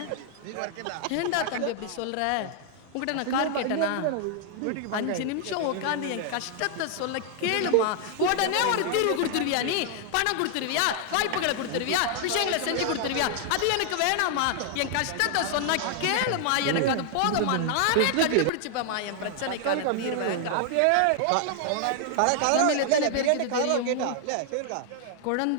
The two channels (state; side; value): different; both; correlation 0.00